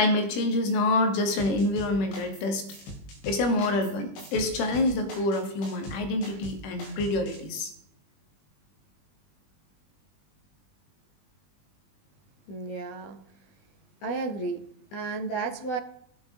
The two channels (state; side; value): late; right; 20 ms